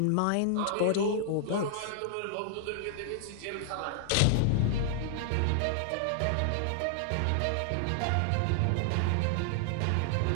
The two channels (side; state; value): both; different; correlation -0.01